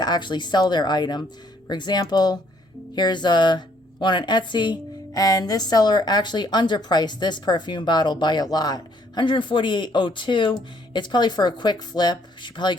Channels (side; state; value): both; normal; correlation 0.66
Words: actually sell their item. For example, here's one on Etsy. And this seller actually underpriced this perfume bottle by a lot, 148.02. It's probably for a quick flip. She probably